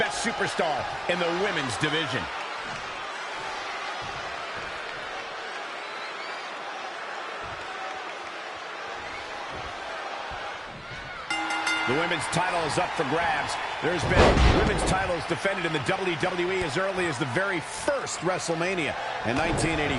superstar in the women's division. The women's title is up for grabs. There's been women's titles defended in the WWE as early as the very first WrestleMania in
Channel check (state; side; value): identical; both; correlation 1.00